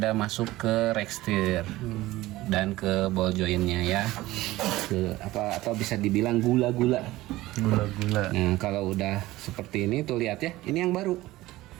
masuk ke rekstir dan ke ball jointnya ya. Atau bisa dibilang gula-gula. Gula-gula. Nah kalau udah seperti ini tuh lihat ya, ini yang baru.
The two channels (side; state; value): left; quieter; 17.6 dB